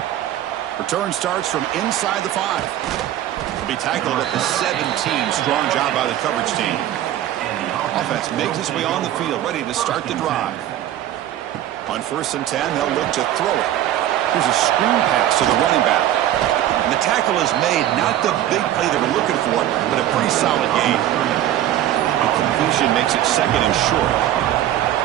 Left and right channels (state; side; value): quieter; left; 12.4 dB